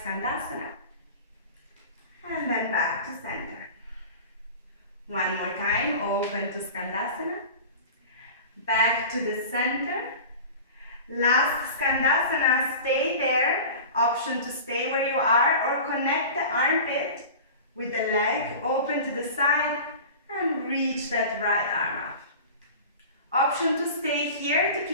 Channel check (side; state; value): both; inverted; correlation -0.36